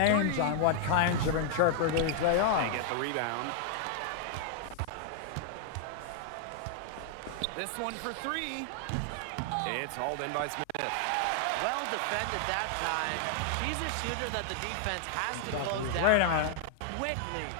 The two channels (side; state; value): both; different; correlation 0.00